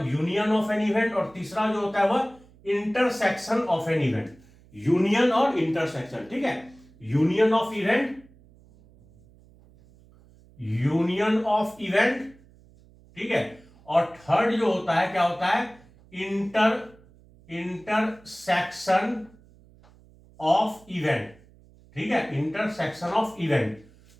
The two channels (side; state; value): right; noise; hum, 27 dB below the sound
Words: यूनियन ऑफ एन इवेंट, और तीसरा जो होता है वह intersection of an event. Union और इंटरसेक्शन। ठीक है, यूनियन ऑफ इवेंट, ठीक है, और थर्ड जो होता है क्या होता है? Intersection of event. ठीक है, intersection of event.